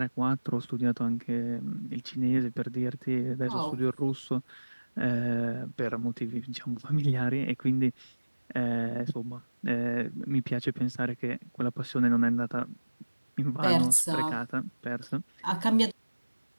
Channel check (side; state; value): both; inverted; correlation -1.00